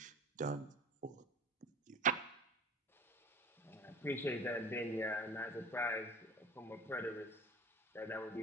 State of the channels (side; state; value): both; normal; correlation 0.40